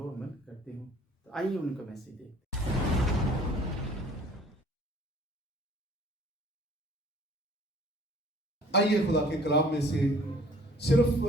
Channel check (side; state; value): both; normal; correlation 0.53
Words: عمل کرتے ہوں۔ تو آئیے ان کا میسج دیکھتے ہیں۔ آئیے خدا کے کلام میں سے صرف